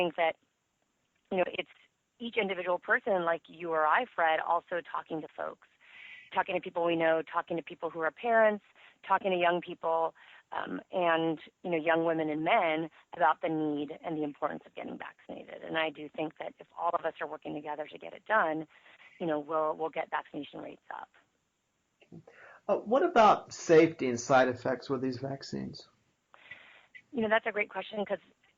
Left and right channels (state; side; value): identical; both; correlation 1.00